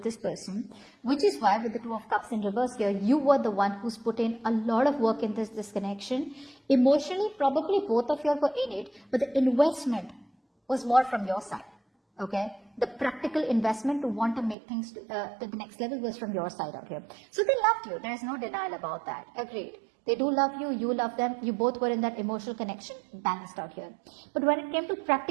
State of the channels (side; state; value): left; drops out; at 14.6 s